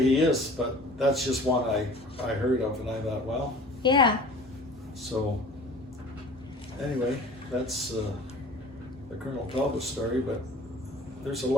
is. But that's just one I heard of, and I thought, well, Yeah. so anyway, that's the Colonel Talbot story. But there's a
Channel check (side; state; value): both; normal; correlation 0.45